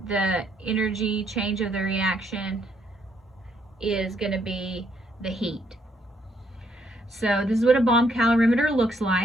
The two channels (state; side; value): normal; both; correlation 0.71